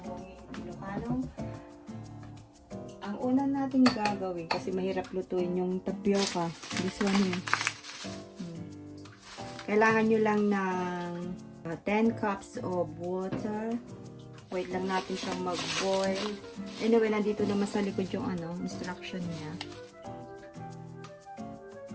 Ilocano. Ang una natin gagawin, kasi mahirap lutuin yung tapioca. This one here. Kailangan nyo lang ng 10 cups of water. Wait lang natin siyang mag-boil. Anyway, nandito naman sa likod yung instruction niya.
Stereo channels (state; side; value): identical; both; correlation 1.00